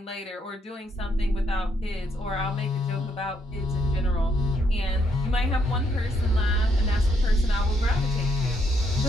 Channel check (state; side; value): normal; both; correlation 0.74